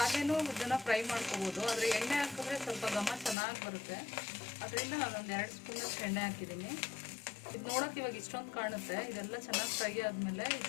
ಇದನ್ನು ಫ್ರೈ ಮಾಡ್ಕೋಬೋದು, ಆದರೆ ಎಣ್ಣೆ ಹಾಕಿದ್ರೆ ಸ್ವಲ್ಪ ಘಮ ಚೆನ್ನಾಗಿ ಬರುತ್ತೆ. ಅದರಿಂದ ನಾನೊಂದು 2 ಸ್ಪೂನಷ್ಟು ಎಣ್ಣೆ ಹಾಕಿದ್ದೀನಿ. ಇದು ನೋಡೋಕೆ ಇವಾಗ ಇಷ್ಟೊಂದು ಕಾಣುತ್ತೆ. ಇದೆಲ್ಲ ಚೆನ್ನಾಗಿ ಫ್ರೈ ಆದಮೇಲೆ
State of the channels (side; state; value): right; drops out; at 3.4 s